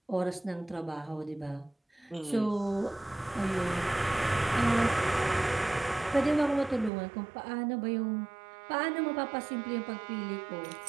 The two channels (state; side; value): drops out; left; at 6.9 s